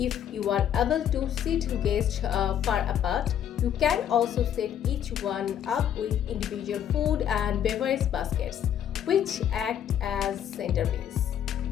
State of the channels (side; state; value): right; quieter; 9.8 dB